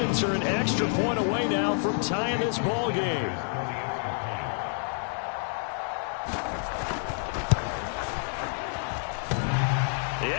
are an extra point away now from tying this ball game. The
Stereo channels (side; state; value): right; silent; 57 dB below the other